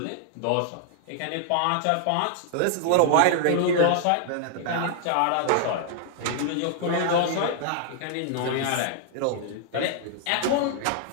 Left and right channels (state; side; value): different; both; correlation 0.00